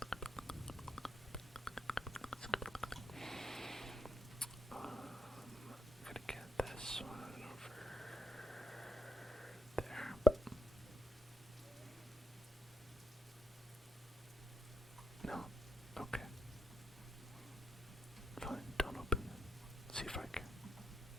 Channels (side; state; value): both; normal; correlation 0.79